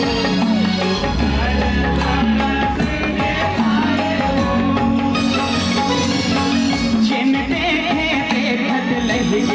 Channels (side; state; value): both; identical; correlation 1.00